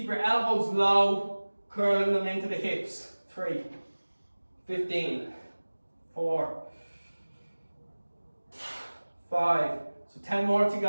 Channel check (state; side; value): inverted; both; correlation -1.00